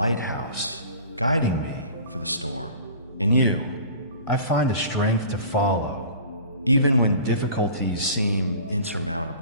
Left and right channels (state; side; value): inverted; both; correlation -0.43